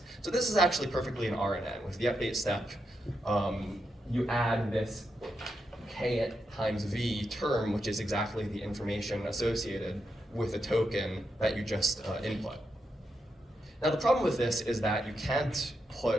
So this is actually perfectly an RNN. With the update step, you add this K times V term, which is exactly the information associated with the token that you just input. Now the problem with this is that you can't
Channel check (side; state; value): both; normal; correlation 0.84